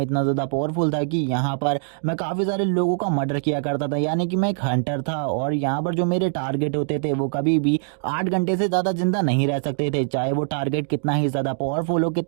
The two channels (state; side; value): silent; left; digital silence